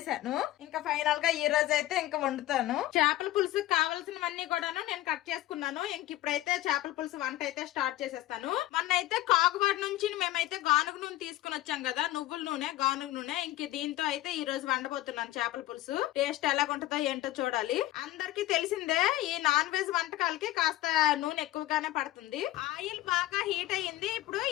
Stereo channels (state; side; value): quieter; right; 15.8 dB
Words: ఇంకా ఫైనల్ గా ఈ రోజు అయితే ఇంకా వండుతాను. చేపల పులుసు కావాల్సినవన్నీ కూడాను నేను కట్ చేసుకున్నాను. ఇంక ఇప్పుడైతే చేపల పులుసు వంట అయితే స్టార్ట్ చేసేస్తాను. మొన్న అయితే కాకువాడ నుంచి మేమైతే గానుగ నూనె తీసుకుని వచ్చాం కదా, నువ్వుల నూనె, గానుగ నూనె. ఇంక దీంతో అయితే ఈ రోజు వండబోతున్నాను చేపల పులుసు. టేస్ట్ ఎలా ఉంటుందో ఏంటో చూడాలి. అందరికి తెలిసిందే ఈ నాన్ వెజ్ వంటకాలకి కాస్త నూనె ఎక్కువగానే పడుతుంది. ఆయిల్ బాగా హీట్ అయ్యింది. ఇప్పుడు